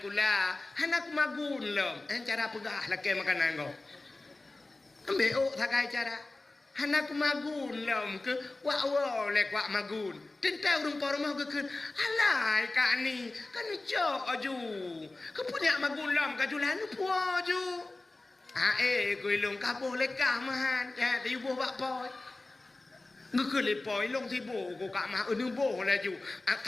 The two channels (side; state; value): right; quieter; 3.0 dB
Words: kula. Hanak magun lom. Cara pegah lakai makanan kau. Ambil ok thakai cara. Hanak magun lom ke wa le kwa magun. Tentang rumah rumah ke kun. Alai kak ni kan jok aju. Ke punya magun lom ka julan puo ju. Kui long ka boleh kah mahan. Ya di buh bak poi. Ngư le poi long thi bồ của cả mà nu bồ là ju.